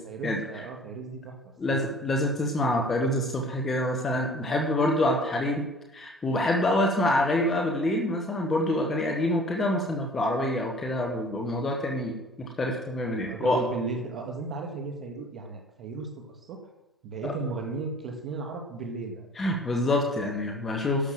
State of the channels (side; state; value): both; normal; correlation 0.49